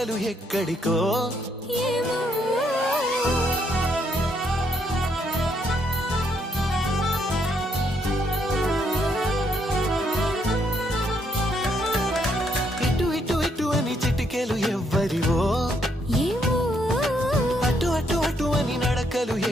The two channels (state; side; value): normal; both; correlation 0.74